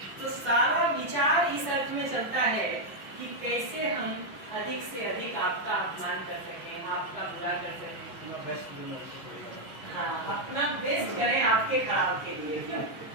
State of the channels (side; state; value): both; normal; correlation 0.00